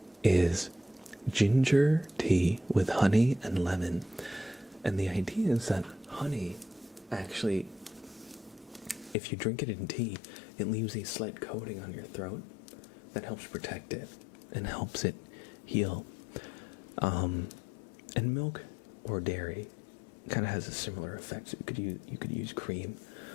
is ginger tea with honey and lemon. And the idea is that honey actually, if you drink it in tea, it leaves a slight coating on your throat that helps protect it and helps it heal. And milk or dairy kind of has a similar effect. So you could use cream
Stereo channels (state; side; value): drops out; right; at 9.2 s